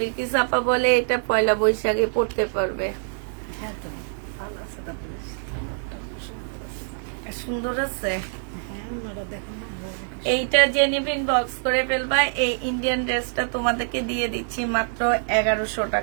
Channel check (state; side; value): silent; left; digital silence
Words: আপা বলে এটা পয়লা বৈশাখে পড়তে পারবে। হ্যাঁ তো ভালো আছে, তারপরে জামাটা সুন্দর আছে। সুন্দর আছে। হ্যাঁ, ওনারা দেখুন না, ভালো আছে। এইটা যে নিবেন বক্স করে ফেলবা। এই ইন্ডিয়ান ড্রেসটা তোমাদেরকে দিয়ে দিচ্ছি মাত্র 1100